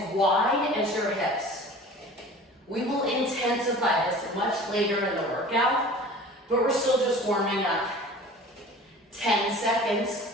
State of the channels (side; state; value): both; normal; correlation 0.42